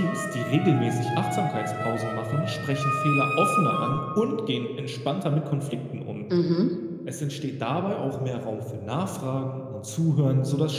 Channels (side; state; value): both; identical; correlation 1.00